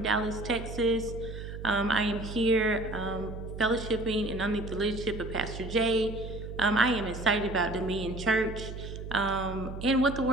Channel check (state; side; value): noise; right; hum, 9 dB below the sound